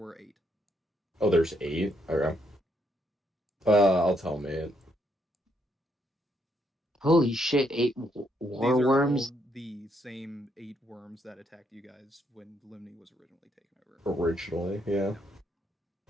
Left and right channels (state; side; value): normal; both; correlation 0.74